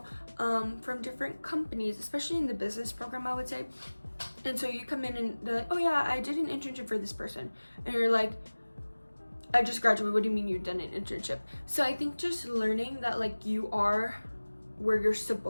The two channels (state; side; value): inverted; both; correlation -1.00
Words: from different companies, especially in the business program, I would say. And so you come in and they're like, oh yeah, I did an internship for this person, and you're like, I just graduated, what do you mean you've done an internship? So I think just learning that like you are where you're